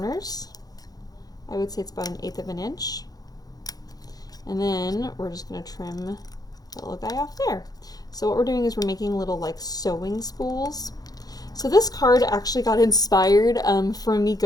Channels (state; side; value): late; right; 0.18 ms